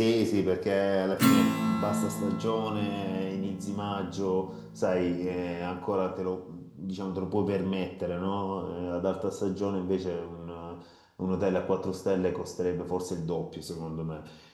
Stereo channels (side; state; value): both; identical; correlation 1.00